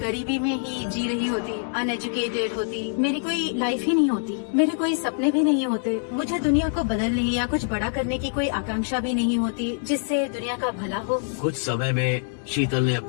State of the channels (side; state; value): right; silent; digital silence